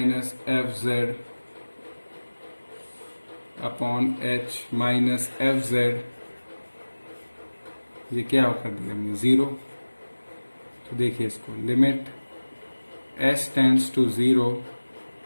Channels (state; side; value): inverted; both; correlation -1.00